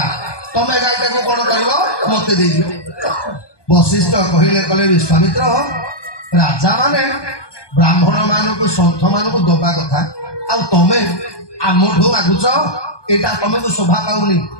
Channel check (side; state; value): right; late; 1.2 ms